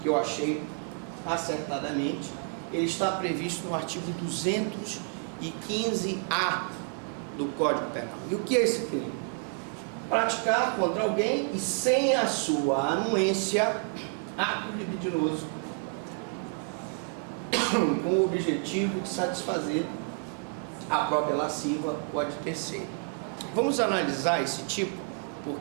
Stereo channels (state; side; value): quieter; left; 37.4 dB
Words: que eu achei acertadamente, ele está previsto no artigo 215-A do Código Penal. E o que é esse crime? Praticar contra alguém e sem a sua anuência ato libidinoso com o objetivo de satisfazer a própria lasciva ou a de terceiro. Vamos analisar esse tipo